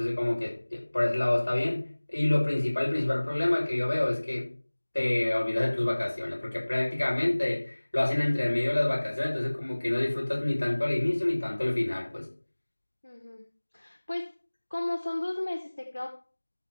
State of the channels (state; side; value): inverted; both; correlation -1.00